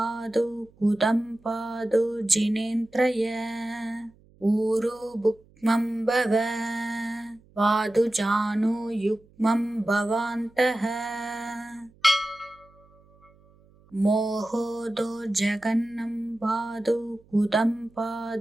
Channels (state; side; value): noise; right; hum, 29 dB below the sound